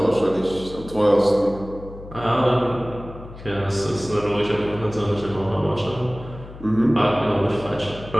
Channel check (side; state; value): left; noise; hum, 15 dB below the sound